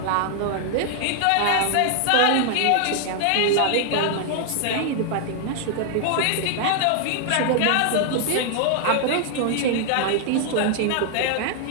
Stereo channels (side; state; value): both; different; correlation 0.00